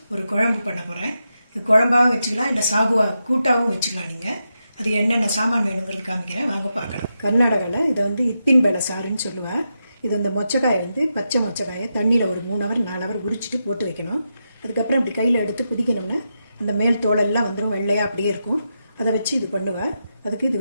ஒரு குழம்பு பண்ண போகிறேன். இது குழம்பாகவும் வச்சுக்கலாம், இல்லை சாகுவா கூட்டாகவும் வச்சுக்கலாம். நீங்கள் அது என்னென்ன சாமான் வேணுங்கிறது காமிக்கிறேன், வாங்க பார்க்கலாம். கர்நாடகாவில் இதை இத்தின் பேலை சாருன்னு சொல்லுவேன். இது இந்த மொச்சக்காயை பச்சை மொச்சக்காயை தண்ணியில் ஒரு 3 ஹவர் 4 ஹவர் உரிச்சிட்டு போட்டு வைக்கணும். அதுக்கப்புறம் இப்படி கையில் எடுத்து குதிக்கணும்னா அந்த மேல் தோலெல்லாம் வந்துடும், வெள்ளையாக அப்படியே இருக்கும். அதை வச்சு இது பண்ணுவேன். அதுக்கு இது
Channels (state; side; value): inverted; both; correlation -0.86